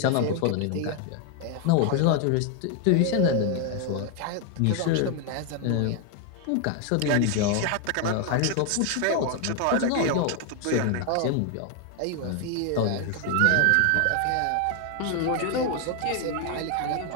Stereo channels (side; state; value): both; different; correlation 0.01